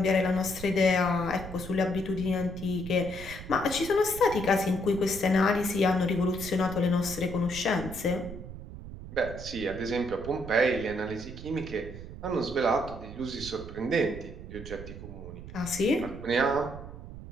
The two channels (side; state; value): right; noise; rumble, 12 dB below the sound